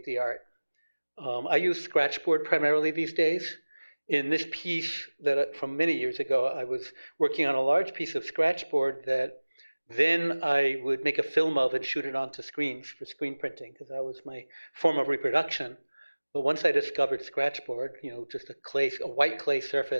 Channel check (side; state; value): both; inverted; correlation -1.00